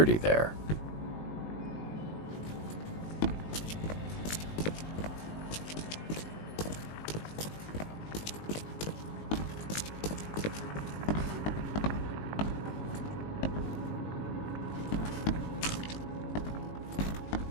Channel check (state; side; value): late; right; 19 ms